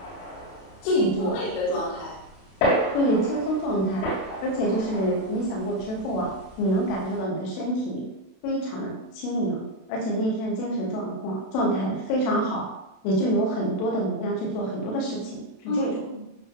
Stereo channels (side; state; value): right; late; 32 ms